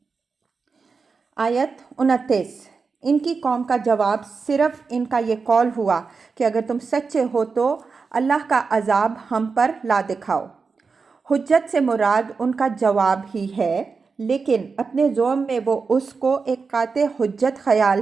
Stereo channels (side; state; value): left; quieter; 4.8 dB